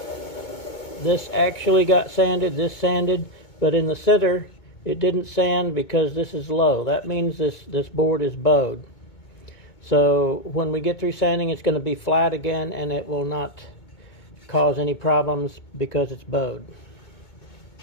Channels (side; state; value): right; late; 2.2 ms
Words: This actually got sanded, this sanded, but in the center it didn't sand because this is low. That means this board is bowed. So when we get through sanding, it's going to be flat again and it will not cause any problems because it's bowed.